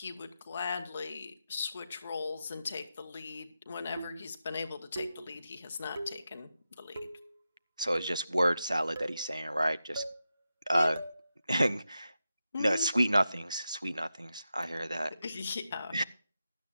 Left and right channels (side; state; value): both; inverted; correlation -0.89